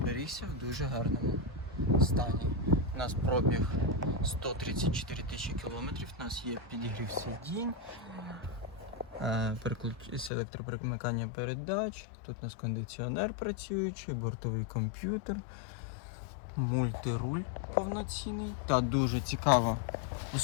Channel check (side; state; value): right; drops out; at 10.3 s